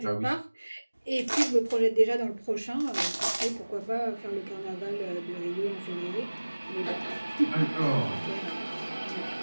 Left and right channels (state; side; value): inverted; both; correlation -1.00